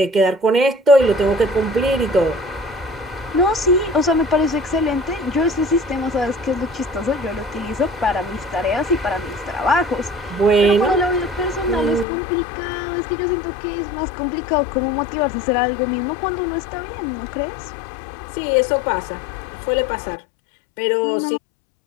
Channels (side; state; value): right; drops out; at 12.1 s